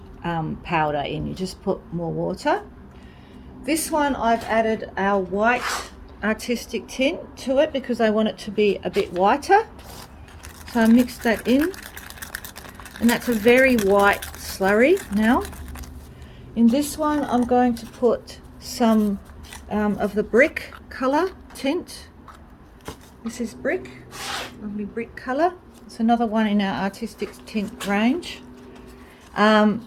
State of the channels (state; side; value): identical; both; correlation 1.00